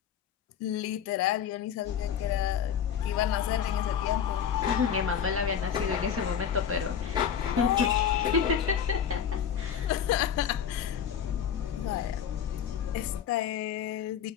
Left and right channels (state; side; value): quieter; right; 8.3 dB